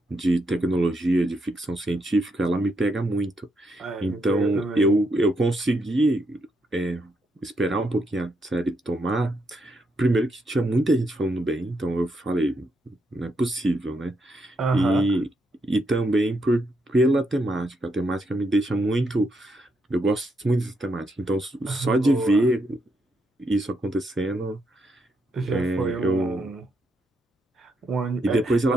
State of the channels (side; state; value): both; normal; correlation 0.79